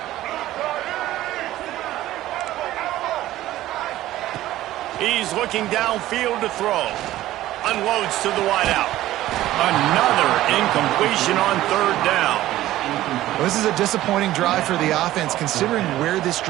He's looking downfield to throw. Unloads to the wideout. Another incompletion on 3rd down. Well, this is a disappointing drive for the offense considering where this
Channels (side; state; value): left; quieter; 14.9 dB